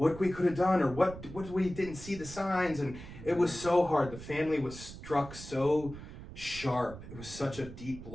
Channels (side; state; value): right; noise; rumble, 13 dB below the sound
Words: we could have done, or what we didn't see the signs. And it was so hard. The family was struck so sharp. It was such a deep